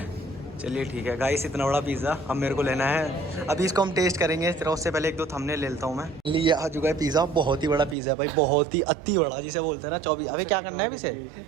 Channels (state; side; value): drops out; left; at 8.0 s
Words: चलिए ठीक है गाइस, इतना बड़ा पिज़्ज़ा अब मेरे को लेना है। अभी इसको हम टेस्ट करेंगे, फिर उससे पहले एक दो थंबनेल ले लेता हूँ मैं। लिए आ चुका है पिज़्ज़ा, बहुत ही बड़ा पिज़्ज़ा है भाई, बहुत ही अति बड़ा जिसे बोलते हैं ना 24। अभी क्या करना है अभी से,